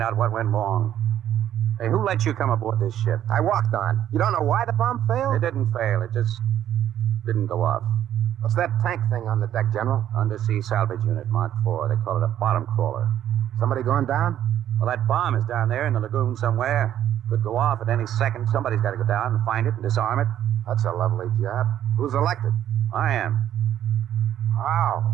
out what went wrong. Hey, who let you come aboard this ship? I walked on. You don't know why the bomb failed? It didn't fail. It just didn't go off. What's that tank thing on the deck, General? Undersea salvage unit, Mark IV. They call it a bottom crawler. Somebody going down? Well, that bomb is down there in the lagoon somewhere. Could go off at any second. Somebody's got to go down and find it and disarm it. That's a lovely job. Who's elected? I am. How?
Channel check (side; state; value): left; quieter; 11.1 dB